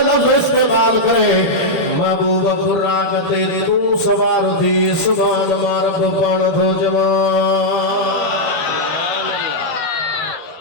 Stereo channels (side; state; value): right; late; 12 ms